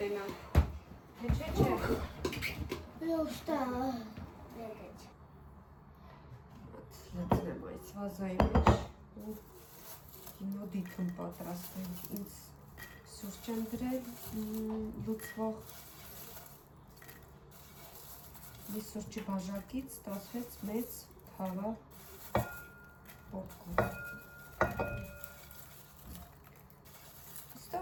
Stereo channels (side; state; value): both; identical; correlation 1.00